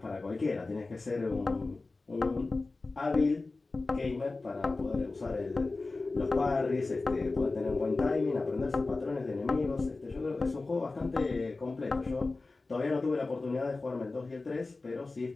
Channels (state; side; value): quieter; right; 3.5 dB